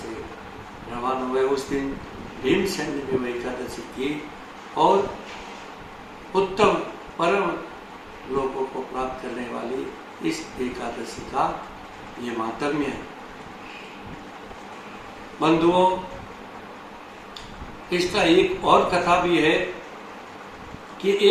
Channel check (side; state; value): both; identical; correlation 1.00